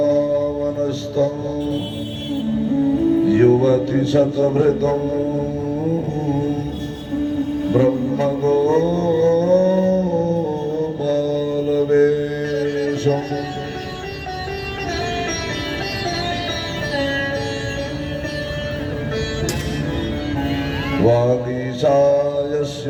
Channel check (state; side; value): identical; both; correlation 1.00